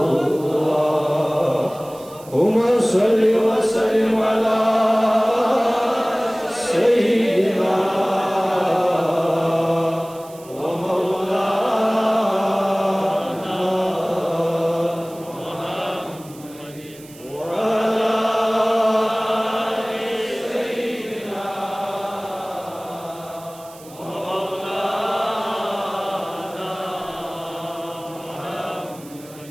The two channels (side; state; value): right; noise; hiss, 21 dB below the sound